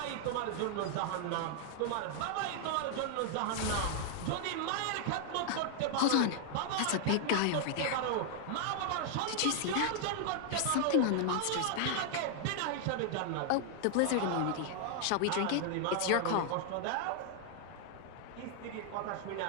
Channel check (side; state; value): both; different; correlation 0.00